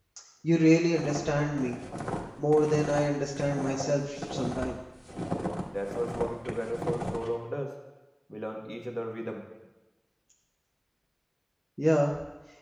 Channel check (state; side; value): identical; both; correlation 1.00